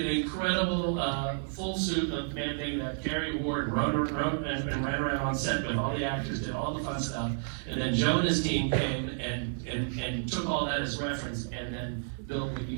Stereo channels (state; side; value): silent; left; 57 dB below the other